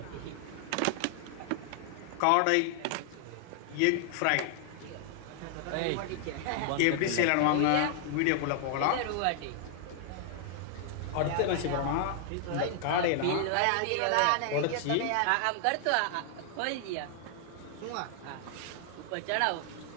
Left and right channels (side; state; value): both; different; correlation 0.00